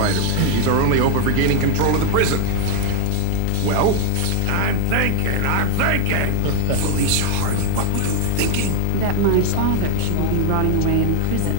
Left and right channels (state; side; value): different; both; correlation 0.00